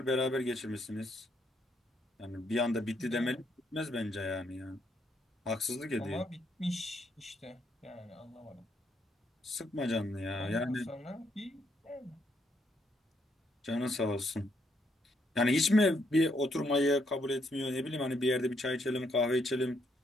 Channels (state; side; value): normal; both; correlation 0.74